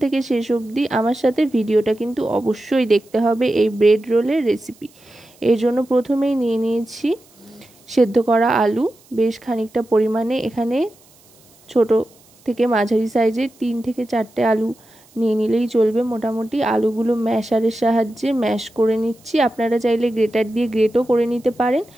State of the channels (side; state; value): right; noise; hiss, 29 dB below the sound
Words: থেকে শেষ অবধি আমার সাথে ভিডিওটা কিন্তু অবশ্যই দেখতে হবে এই ব্রেড রোলের রেসিপি। এর জন্য প্রথমেই নিয়ে নিয়েছি সেদ্ধ করা আলু বেশ খানিকটা পরিমাণে। এখানে ছোট থেকে মাঝারি সাইজের 3 থেকে 4টে আলু নিয়ে নিলেই চলবে। মোটামুটি আলুগুলো ম্যাশারের সাহায্যে ম্যাশ করে নিচ্ছি। আপনারা চাইলে গ্রেটার দিয়ে গ্রেটও করে নিতে পারেন,